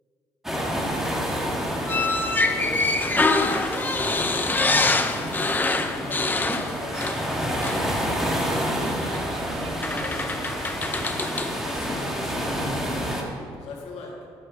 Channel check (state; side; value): normal; both; correlation 0.48